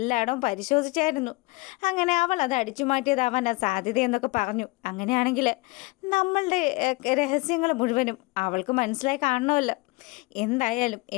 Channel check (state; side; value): quieter; right; 23.7 dB